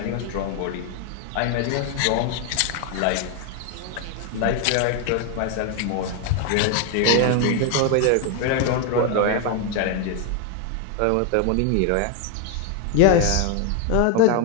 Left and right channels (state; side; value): different; both; correlation 0.01